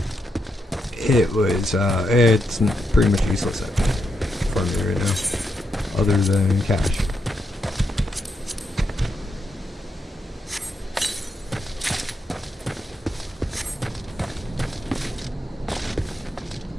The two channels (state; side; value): normal; both; correlation 0.83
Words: that. It was, it's pretty much useless for me right now, other than cash.